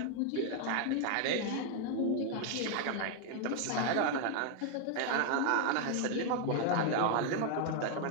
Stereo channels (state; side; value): different; both; correlation 0.00